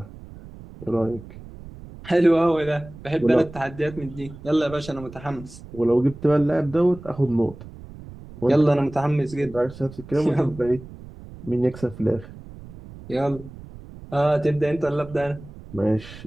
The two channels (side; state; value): right; noise; rumble, 16 dB below the sound